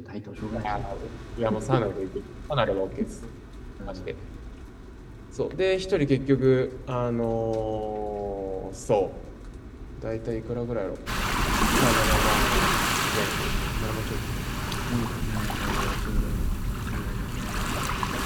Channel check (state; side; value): identical; both; correlation 1.00